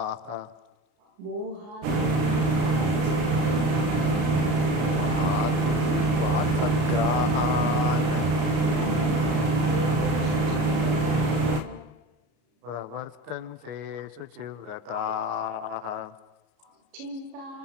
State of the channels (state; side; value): late; left; 33 ms